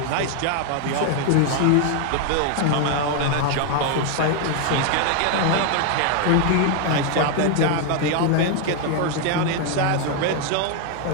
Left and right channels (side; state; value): both; different; correlation 0.00